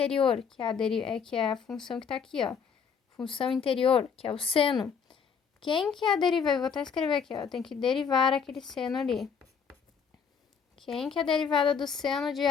que é a função que está aqui, ó. Função interior, que é o seno. Quem que é a derivada? Eu vou até escrever aqui, ó. Tem que derivar aquele seno ali. Quem que é a derivada do seno de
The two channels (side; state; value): right; quieter; 6.5 dB